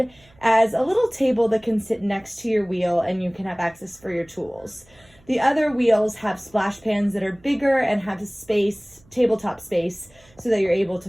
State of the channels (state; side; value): noise; right; hum, 30 dB below the sound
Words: as a little table that can sit next to your wheel and you can have access for your tools. The other wheels have splash pans that are bigger and have space, tabletop space, so that you're able